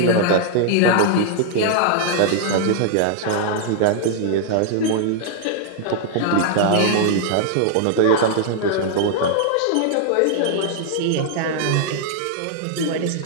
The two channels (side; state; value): both; different; correlation 0.00